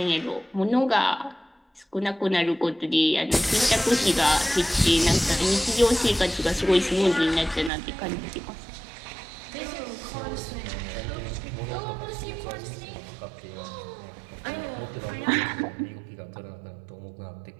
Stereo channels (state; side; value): drops out; left; at 7.7 s